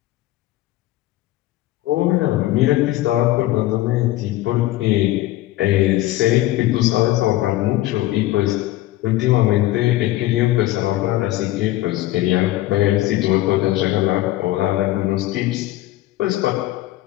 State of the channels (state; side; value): quieter; right; 16.1 dB